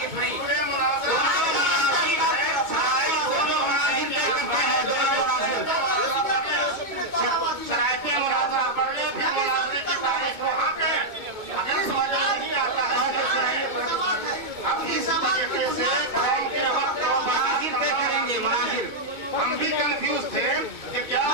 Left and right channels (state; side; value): late; left; 2.3 ms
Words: नहीं। शराइते मुनाजरा पढ़ने फिर मुनाजरे की तारीख वहाँ पे अगर समझ नहीं आता है अब इस तरीके से मुनाजिर तय करेंगे। मुनाजिर हम भी कंफ्यूज थे कि क्या